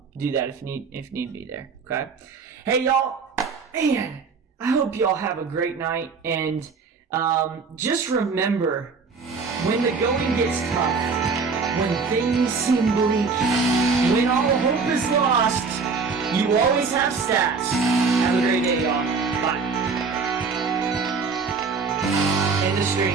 do that if need be there. Okay. Hey, y'all. Man. I hope y'all have a great night, and just remember, when the going gets tough, when things seem bleak, when all hope is lost, you always have stats. Have a great day, y'all. Bye. End the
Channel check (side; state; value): left; quieter; 4.8 dB